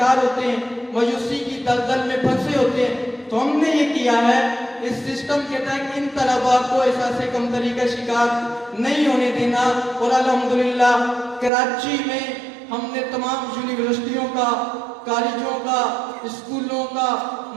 ہوتے ہیں، مایوسی کی دلدل میں پھنسے ہوتے ہیں۔ تو ہم نے یہ کیا ہے، اس سسٹم کے تحت ان طلباء کو احساس کمتری کا شکار نہیں ہونے دینا، اور الحمدللہ کراچی میں ہم نے تمام یونیورسٹیوں کا، کالجوں کا، اسکولوں کا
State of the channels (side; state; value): left; drops out; at 11.5 s